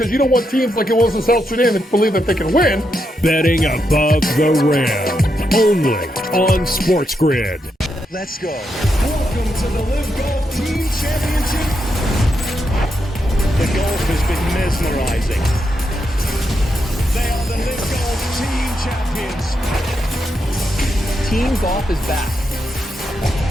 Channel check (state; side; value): normal; both; correlation 0.83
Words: you don't want teams like it was in South Sudan that believe that they can win. Betting above the rim, only on SportsGrid. Let's go. Welcome to the Live Golf Team Championship. The golf has been mesmerizing. They are the Live Golf Team Champions. Team golf is back. Oh,